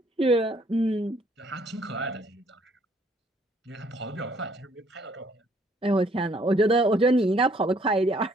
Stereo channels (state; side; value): normal; both; correlation 0.64